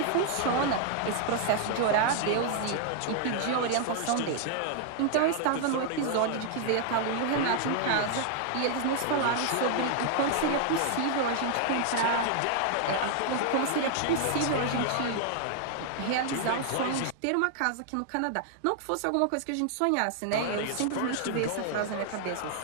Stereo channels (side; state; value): both; different; correlation 0.00